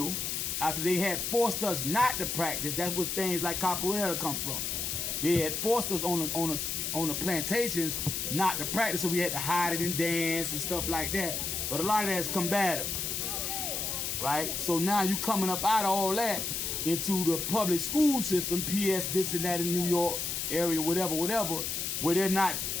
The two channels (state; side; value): noise; left; hiss, 2 dB below the sound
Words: after they had forced us not to practice, that's where things like capoeira come from. They had forced us on the plantations not to practice, so we had to hide it and dance and stuff like that. But a lot of that is combative, right? So now you coming up out of all that into the public school system, PS this and that in New York area, whatever, where they're not